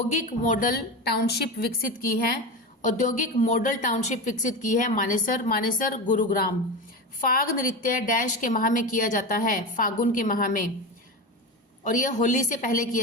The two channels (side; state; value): both; normal; correlation 0.23